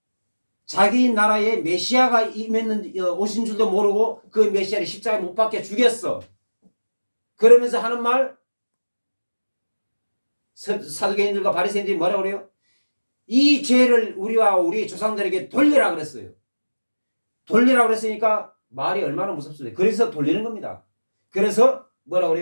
메시아가 오신 줄도 모르고 그 메시아를 십자가에 못 박혀 죽였어. 그러면서 하는 말 사두개인들과 바리새인들이 뭐라고 그래요? 이 죄를 우리와 우리 조상들에게 돌리라 그랬어요. 돌리라 그랬으니까 말이 얼마나 무섭습니까? 그래서 돌리는 겁니다. 그래서 뭐라고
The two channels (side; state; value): both; inverted; correlation -1.00